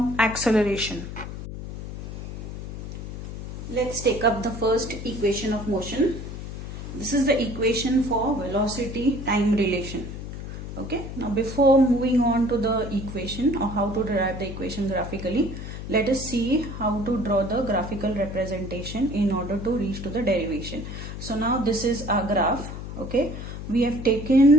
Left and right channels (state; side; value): noise; left; hum, 8 dB below the sound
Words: acceleration. Let's take up the first equation of motion. This is the equation for velocity-time relation. Okay, now before moving on to the equation or how to derive the equation graphically, let us see how to draw the graphical representation in order to reach to the derivation. So now this is our graph. Okay, we have